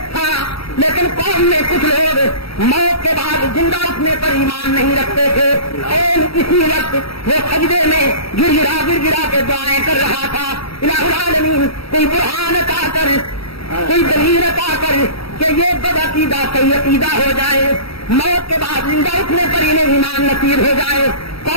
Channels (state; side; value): late; right; 0.76 ms